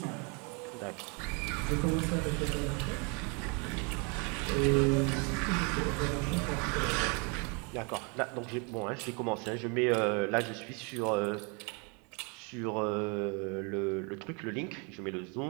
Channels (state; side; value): quieter; left; 33.0 dB